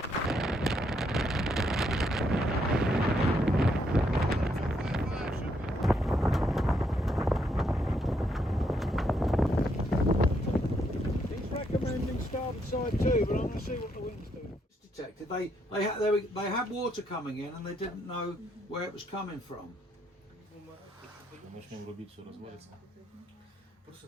Side too, but I'm going to see what the wind's doing. It's detected. They had water coming in and they didn't know where it was coming from. Начнем рубить, все развалится.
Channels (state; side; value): normal; both; correlation 0.75